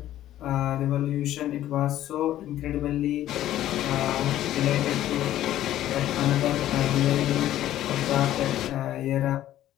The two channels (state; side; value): quieter; right; 13.0 dB